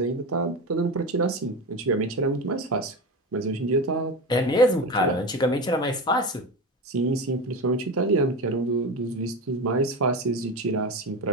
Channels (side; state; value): both; normal; correlation 0.22